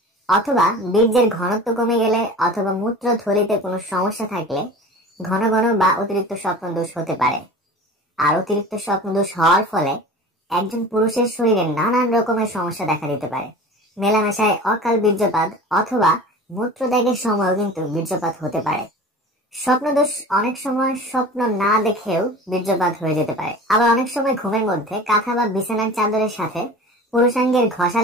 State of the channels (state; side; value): normal; both; correlation 0.38